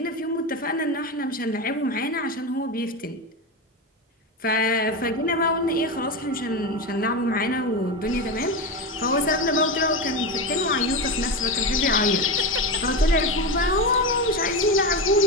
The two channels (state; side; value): normal; both; correlation 0.17